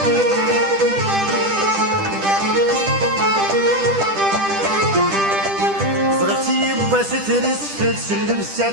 زرتي بس ترسفت سلم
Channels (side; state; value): left; late; 10 ms